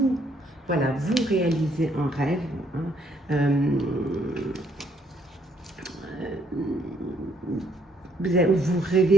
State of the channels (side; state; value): both; normal; correlation 0.68